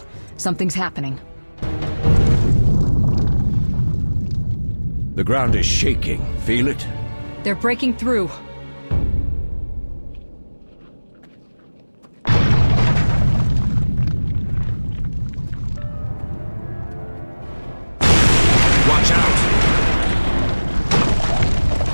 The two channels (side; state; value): both; inverted; correlation -1.00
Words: Something's happening. The ground is shaking. Feel it? They're breaking through. Watch out!